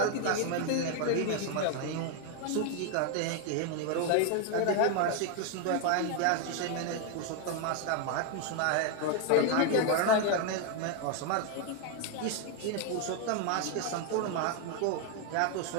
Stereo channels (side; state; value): both; different; correlation 0.01